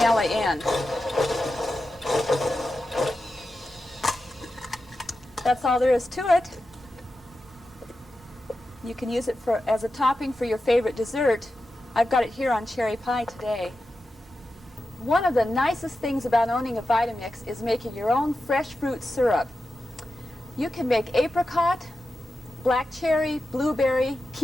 in. That's all there is to it. You can use it as a topping for your favorite dessert. I've got it here on cherry pie today. One of the nicest things about owning a VitaMix is making your own fresh fruit syrup. You can make apricot, black cherry, blueberry,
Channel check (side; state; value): both; normal; correlation 0.91